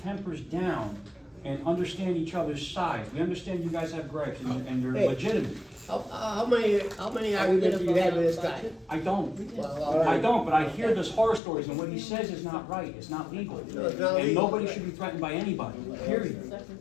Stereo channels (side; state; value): right; drops out; at 11.4 s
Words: down and understand each other's sides. We understand you guys have gripes and they're Hey. legitimate. How many arguments have you had with this guy? I don't. Well, all I right. don't, but I hear those horror stories and what he says is not right, it's not legal. No, it's not And legal. nobody should be threatened by anybody, period. You